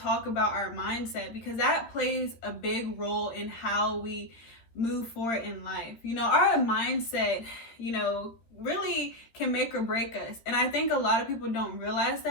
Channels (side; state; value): right; late; 13 ms